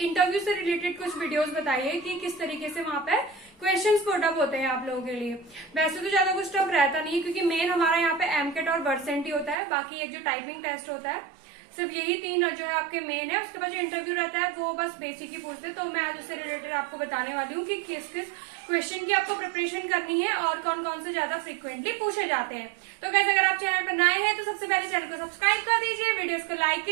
इंटरव्यू से रिलेटेड कुछ वीडियोस बताइए कि किस तरीके से वहां पे क्वेश्चंस पुट अप होते हैं आप लोगों के लिए। वैसे तो ज्यादा कुछ टफ रहता नहीं है क्योंकि मेन हमारा यहाँ पे एमकेट और वर्सेंट ही होता है, बाकी एक जो टाइपिंग टेस्ट होता है सिर्फ यही तीन जो है आपके मेन है। उसके बाद जो इंटरव्यू रहता है वो बस बेसिक ही पूछते हैं। तो मैं आज उससे रिलेटेड आपको बताने वाली हूँ कि किस किस क्वेश्चन की आपको प्रिपरेशन करनी है और कौन कौन से ज्यादा फ्रिक्वेंटली पूछे जाते हैं। तो गाइस अगर आप चैनल पर नए हैं तो सबसे पहले चैनल को सब्सक्राइब कर दीजिए, वीडियोस को लाइक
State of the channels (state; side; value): drops out; left; at 9.6 s